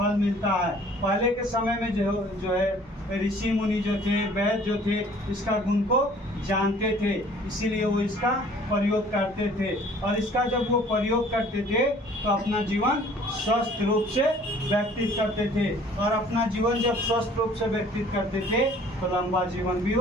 मिलता है। पहले के समय में जो है ऋषि मुनि जो थे, वैद्य जो थे, इसका गुण को जानते थे, इसीलिए वो इसका प्रयोग करते थे। और इसका जब वो प्रयोग करते थे तो अपना जीवन स्वस्थ रूप से व्यतीत करते थे, और अपना जीवन जब स्वस्थ रूप से व्यतीत करते थे तो लंबा जीवन भी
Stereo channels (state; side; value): normal; both; correlation 0.53